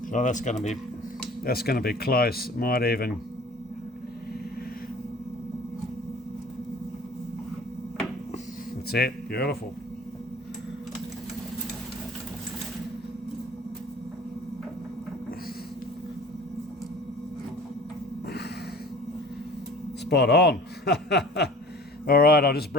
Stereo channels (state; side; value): normal; both; correlation 0.45